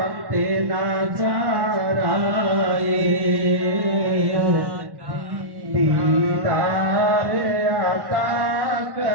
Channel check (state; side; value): late; left; 1.1 ms